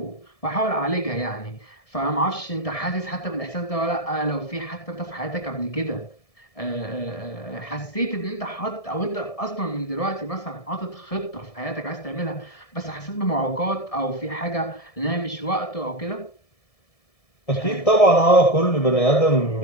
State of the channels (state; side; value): late; right; 1.7 ms